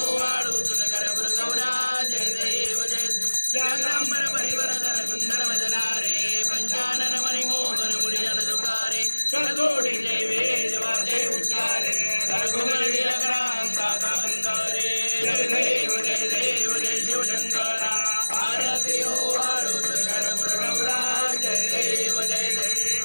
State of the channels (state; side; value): inverted; both; correlation -1.00